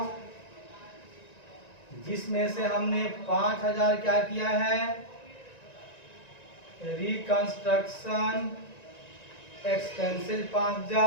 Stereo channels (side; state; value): right; late; 1.9 ms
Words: जिसमें से हमने 5,000 क्या किया है? रिकंस्ट्रक्शन एक्सपेंसिव